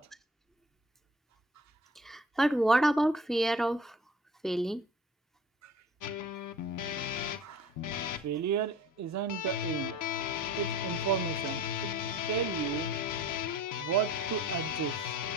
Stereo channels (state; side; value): normal; both; correlation 0.44